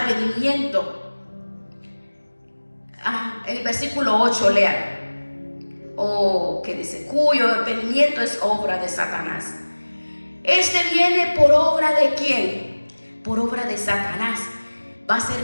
el versículo 8, lean, que dice, cuyo advenimiento es obra de Satanás, Este viene por obra de ¿quién? Por obra de Satanás. Va a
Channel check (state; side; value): inverted; both; correlation -1.00